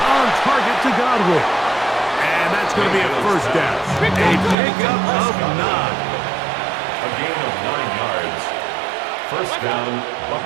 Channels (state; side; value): drops out; left; at 4.5 s